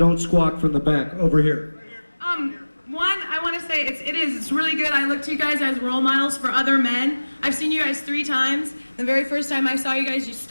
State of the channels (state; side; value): inverted; both; correlation -1.00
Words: squawk from the back. Over here. One, I want to say it's really good. I look to you guys as role models for other men. I've seen you guys 3 times. The very first time I saw you guys, you